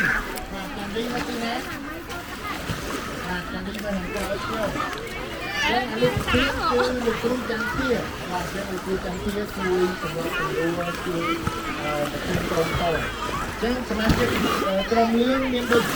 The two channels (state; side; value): identical; both; correlation 1.00